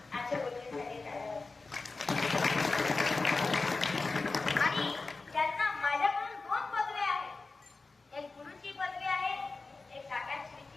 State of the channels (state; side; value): quieter; right; 3.8 dB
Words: आमच्या गुरुजींसाठी टाळ्या. आणि त्यांना माझ्याकडून 2 पदवी आहेत. एक गुरुची पदवी आहे, एक